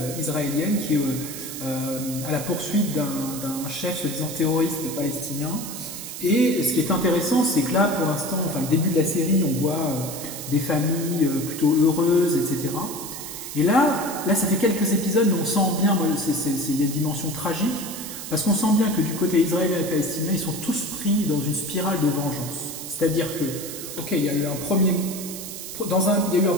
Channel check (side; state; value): right; noise; hiss, 9 dB below the sound